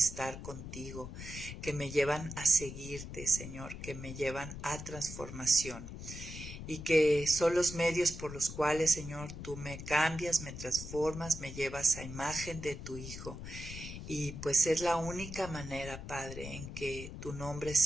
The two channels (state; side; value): noise; left; rumble, 10 dB below the sound